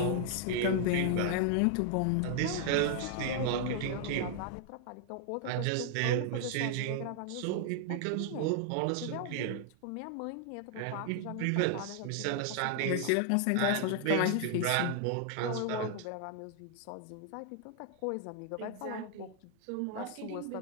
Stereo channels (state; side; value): different; both; correlation 0.00